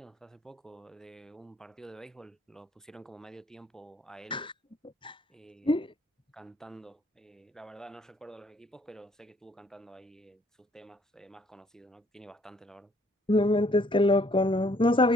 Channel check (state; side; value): normal; both; correlation 0.63